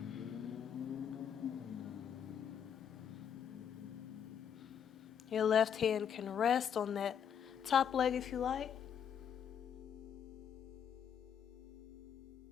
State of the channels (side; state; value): right; quieter; 8.2 dB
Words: Your left hand can rest on that top leg if you like.